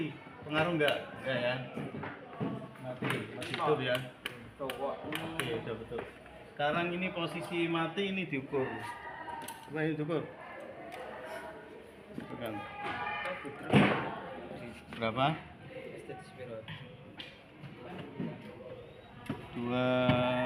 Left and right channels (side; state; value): both; identical; correlation 1.00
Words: pengaruh enggak ya? Mati, masih hidup ya. Oke, udah betul. Sekarang ini posisi mati ini diukur. Coba ini diukur. Tekan. Berapa? Dua